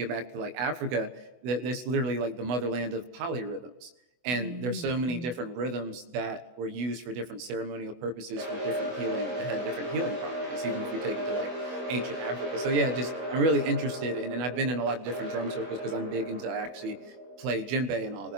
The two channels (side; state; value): left; late; 24 ms